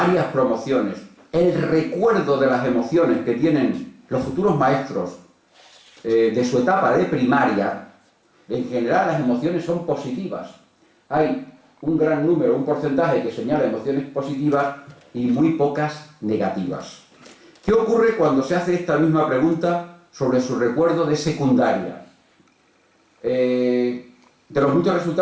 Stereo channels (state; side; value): identical; both; correlation 1.00